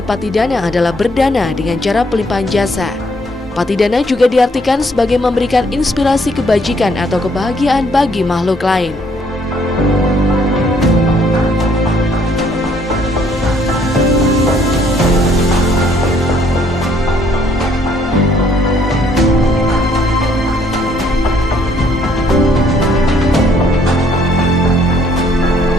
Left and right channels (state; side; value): normal; both; correlation 0.66